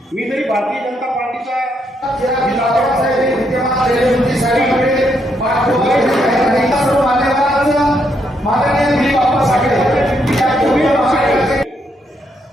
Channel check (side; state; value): both; normal; correlation 0.76